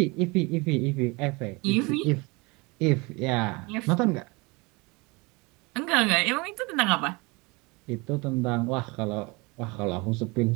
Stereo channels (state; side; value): quieter; left; 26.4 dB